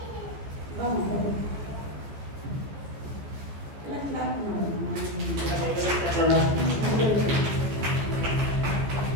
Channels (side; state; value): left; late; 15 ms